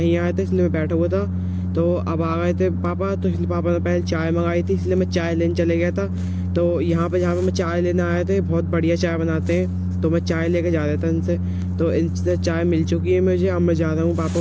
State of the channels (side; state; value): both; identical; correlation 1.00